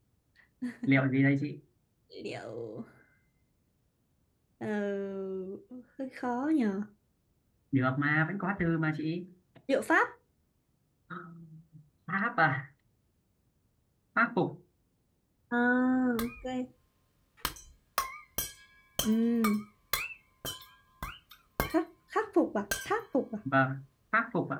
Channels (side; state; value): both; identical; correlation 1.00